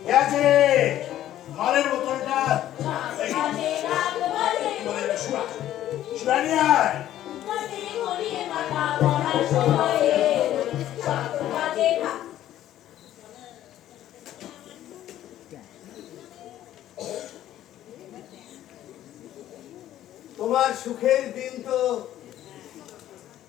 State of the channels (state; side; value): quieter; right; 12.7 dB